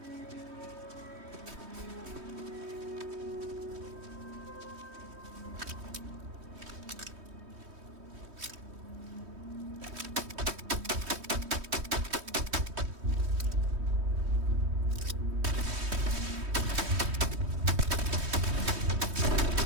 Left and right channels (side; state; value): left; late; 3.2 ms